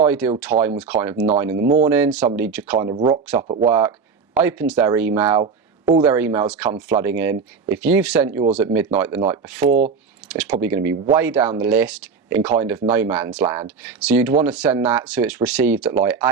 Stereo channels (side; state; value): left; quieter; 5.4 dB